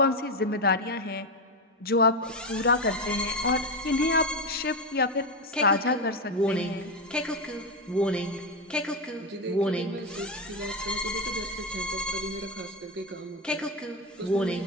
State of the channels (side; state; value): both; normal; correlation 0.12